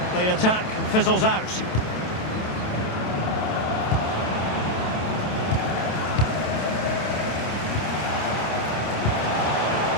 the attack fizzles out.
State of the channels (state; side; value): late; right; 27 ms